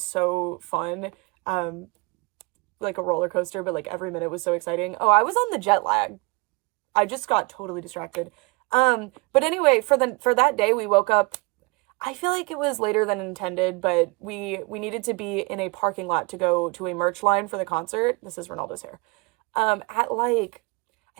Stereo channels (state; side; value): quieter; left; 27.5 dB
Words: so fun. Like a roller coaster, but like every minute was so exciting. Oh, I was on the jet lag. I just got totally distracted. But anyway, for that day we woke up, I feel like it was later than intended, but we needed to be in a parking lot to go to a merch line for the concert. This is Ronaldo's hair. At like,